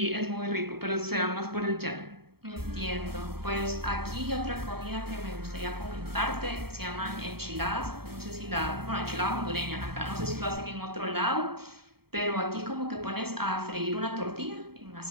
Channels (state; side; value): late; left; 0.95 ms